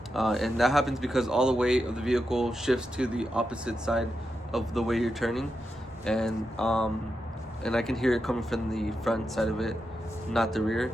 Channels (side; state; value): both; normal; correlation 0.87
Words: And that happens because all the weight of the vehicle shifts to the opposite side of the way you're turning, and I can hear it coming from the front side of it, not the rear.